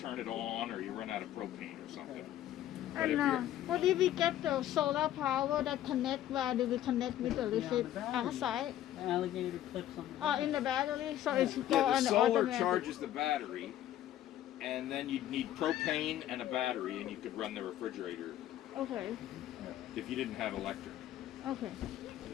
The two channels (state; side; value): quieter; right; 12.4 dB